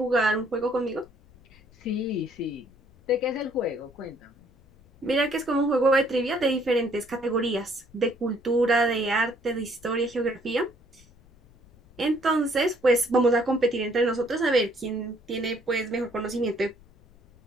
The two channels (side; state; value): left; noise; rumble, 27 dB below the sound